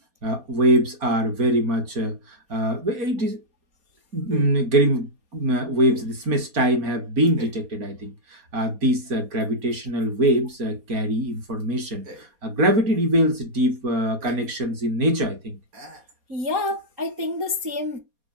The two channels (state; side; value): late; left; 4.2 ms